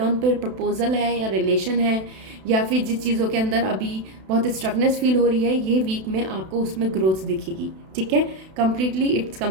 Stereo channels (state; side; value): late; left; 32 ms